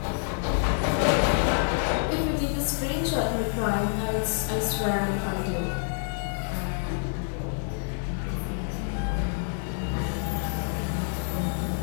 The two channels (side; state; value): right; silent; digital silence